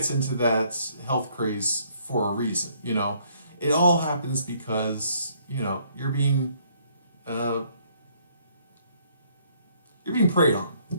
into that health craze for a reason. You know, it all happens because, you know, uh, you're being preyed on,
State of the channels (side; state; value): both; inverted; correlation -0.65